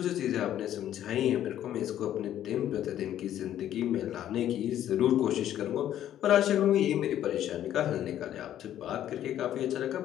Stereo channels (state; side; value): quieter; right; 11.5 dB